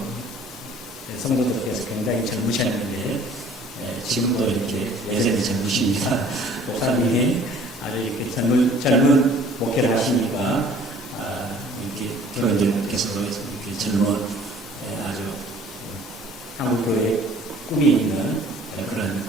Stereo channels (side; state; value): both; normal; correlation 0.53